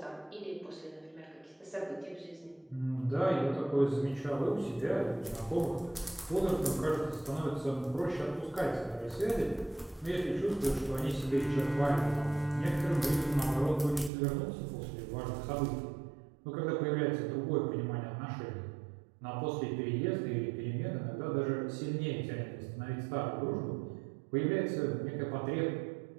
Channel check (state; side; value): drops out; left; at 14.1 s